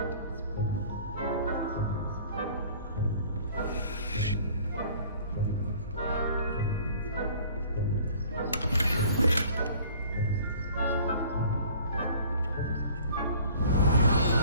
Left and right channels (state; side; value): inverted; both; correlation -0.50